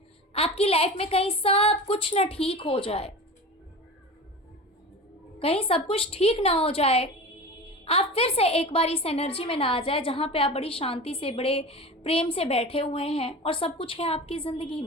आपकी लाइफ में कहीं सब कुछ ना ठीक हो जाए, कहीं सब कुछ ठीक ना हो जाए, आप फिर से एक बार इस एनर्जी में ना आ जाए जहाँ पे आप बड़ी शांति से, बड़े प्रेम से बैठे हुए हैं और सब कुछ है आपकी ज़िंदगी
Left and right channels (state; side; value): normal; both; correlation 0.31